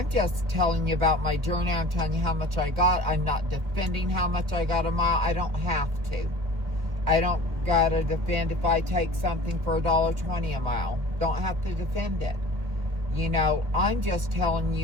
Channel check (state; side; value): late; left; 1.6 ms